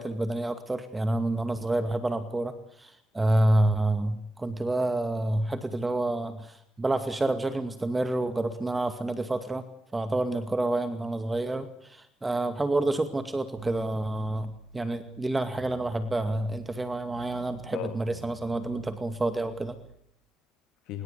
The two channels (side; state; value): both; normal; correlation 0.93